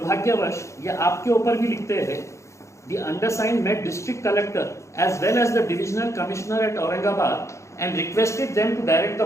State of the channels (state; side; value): late; right; 0.14 ms